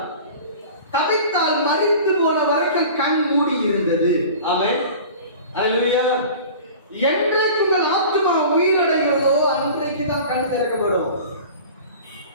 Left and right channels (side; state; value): both; inverted; correlation -0.40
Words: தவித்தால் மறித்து போன வரைக்கும் கண் மூடி இருந்தது. ஆமென். அல்லேலூயா. என்றைக்கு உங்கள் ஆத்மா உயிரடைகிறதோ அன்றைக்கு தான் கண் திறக்கப்படும்.